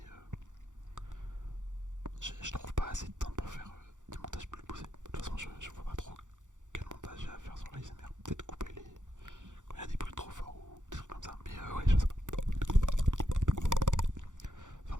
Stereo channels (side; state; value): left; late; 0.86 ms